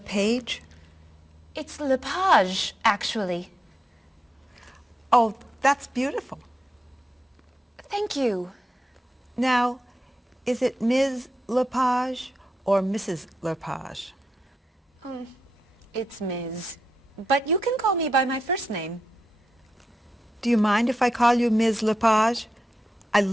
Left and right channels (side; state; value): both; normal; correlation 0.87